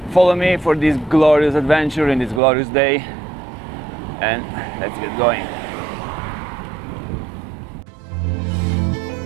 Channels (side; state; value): left; drops out; at 2.4 s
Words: follow me for this glorious adventure in this glorious day, and let's get going.